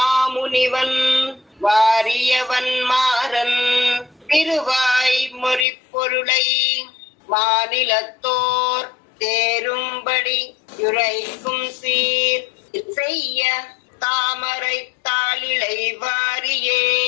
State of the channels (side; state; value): right; drops out; at 5.7 s